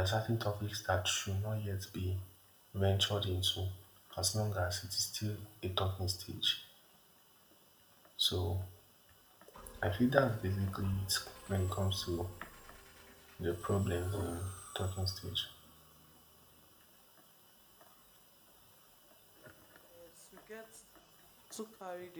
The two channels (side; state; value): both; identical; correlation 1.00